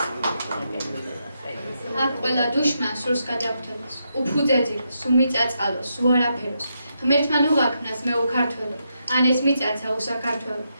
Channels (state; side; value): inverted; both; correlation -0.82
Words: აქ ყველა დუშმა სურს გადახვდებას, უფუძეძილოს, უმიწაწალოს, უარაფეროს. ღმერთმა უღაქმნას მე უქართველო, ან ეს მიწაცა უსაქართველო.